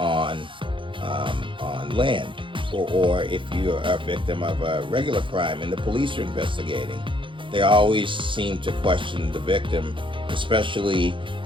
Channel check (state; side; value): late; left; 0.24 ms